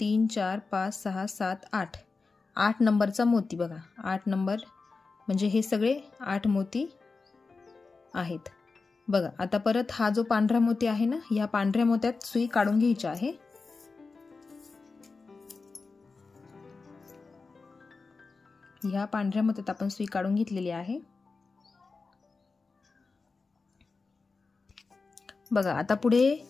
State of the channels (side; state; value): right; quieter; 4.2 dB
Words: 4 5 6 7 8 8 नंबरचा मोती बघा. 8 नंबर म्हणजे हे सगळे 8 मोती आहेत बघा. आता परत हा जो पांढरा मोती आहे ना, या पांढऱ्या मोत्यात सुई काढून घ्यायची आहे. ह्या पांढऱ्या मोत्यात आपण सुई काढून घेतलेली आहे बघा. आता पुढे